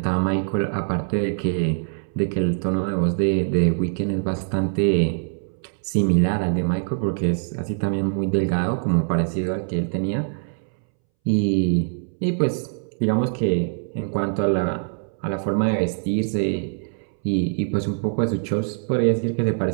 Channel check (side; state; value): left; silent; 63 dB below the other